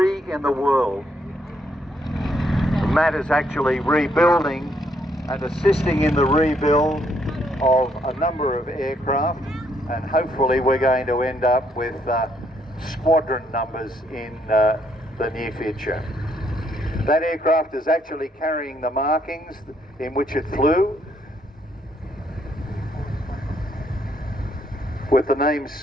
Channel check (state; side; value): normal; both; correlation 0.72